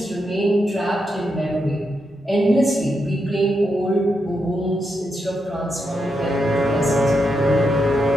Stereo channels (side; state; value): both; normal; correlation 0.84